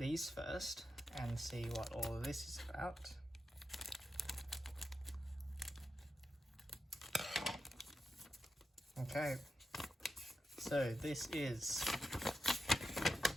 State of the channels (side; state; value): both; normal; correlation 0.89